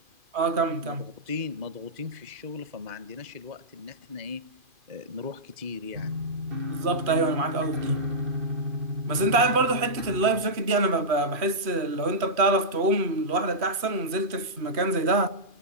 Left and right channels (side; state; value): left; late; 2.5 ms